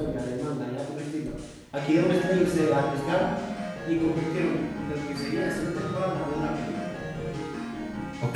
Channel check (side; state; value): both; identical; correlation 1.00